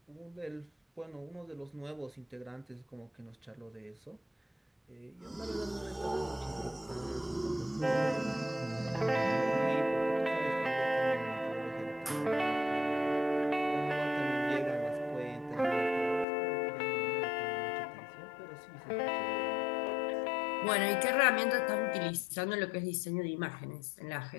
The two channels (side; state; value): right; drops out; at 16.2 s